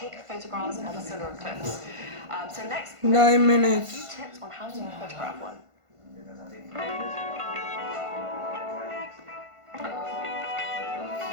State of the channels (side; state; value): left; late; 1.5 ms